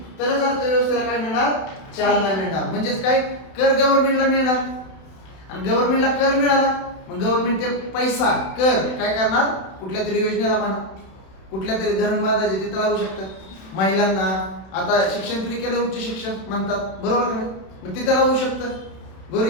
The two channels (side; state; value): right; late; 31 ms